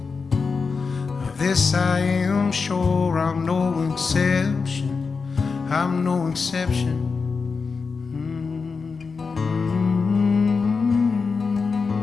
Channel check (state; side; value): quieter; right; 4.9 dB